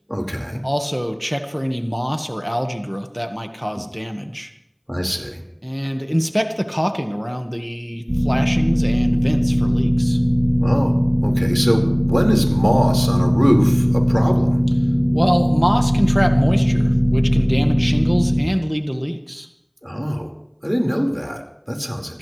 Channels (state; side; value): identical; both; correlation 1.00